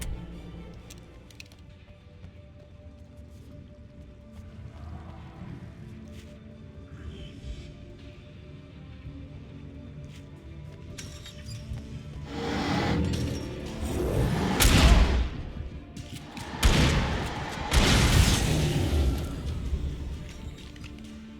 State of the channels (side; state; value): both; identical; correlation 1.00